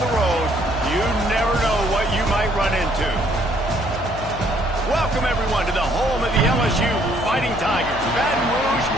the road, you never know what you might run into. Welcome, everyone, to the home of the LSU Fighting Tigers, Baton Rouge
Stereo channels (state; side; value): noise; left; hum, 11 dB below the sound